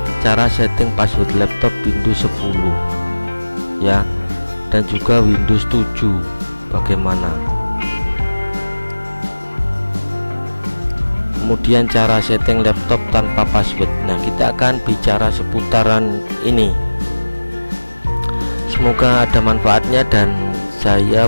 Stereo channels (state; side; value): inverted; both; correlation -1.00